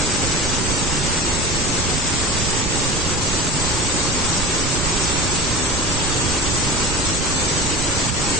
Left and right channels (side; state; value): right; noise; rumble, 3 dB below the sound